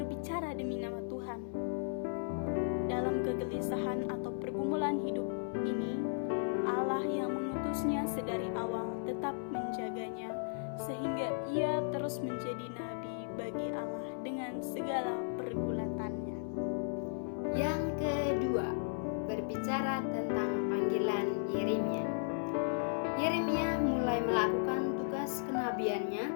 demi nama Tuhan. Dalam kegelisahan atau pergumulan hidup ini, Allah yang mengutusnya sedari awal tetap menjaganya, sehingga ia terus menjadi nabi bagi Allah dengan segala pergulatannya. yang kedua, berbicara tentang panggilan Yeremia. Yeremia mulai melakukan tugas kenabiannya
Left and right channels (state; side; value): silent; right; 54 dB below the other